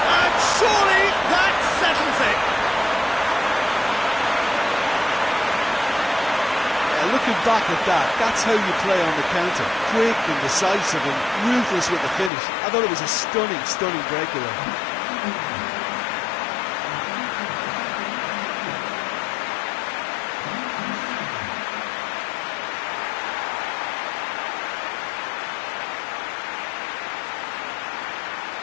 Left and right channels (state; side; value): drops out; right; at 12.3 s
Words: And surely that settles it. Looking back at that, that's how you play on the counter. Quick and decisive and ruthless with the finish. I thought it was a stunning, stunning breakaway.